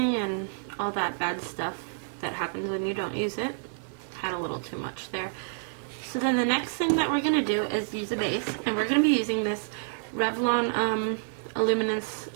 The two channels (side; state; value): left; silent; digital silence